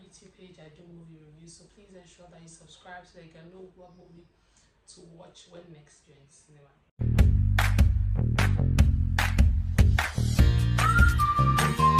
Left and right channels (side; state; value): both; identical; correlation 1.00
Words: YouTube page. I do movie reviews, so please ensure that you subscribe so that you can know what movie to watch when next you're in the cinema.